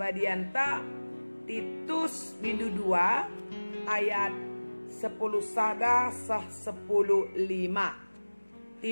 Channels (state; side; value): inverted; both; correlation -1.00